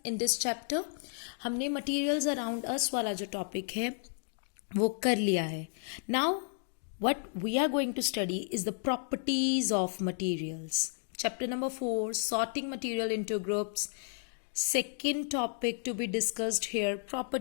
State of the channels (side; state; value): right; silent; digital silence